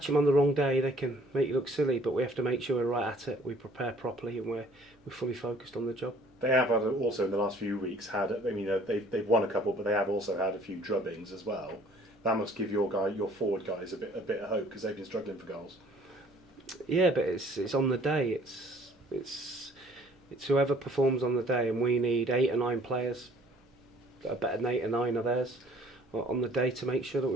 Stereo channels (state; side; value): normal; both; correlation 0.56